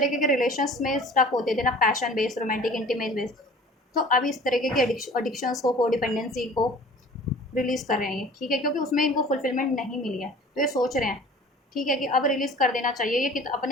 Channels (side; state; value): both; normal; correlation 0.46